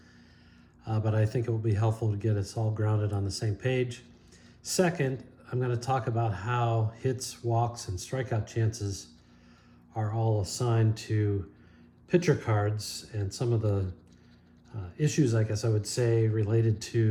but I think it will be helpful to get us all grounded on the same page. Second, I'm going to talk about how hits, walks, and strikeout chances are all assigned to pitcher cards and some of the issues, I guess I would say, related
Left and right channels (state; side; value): identical; both; correlation 1.00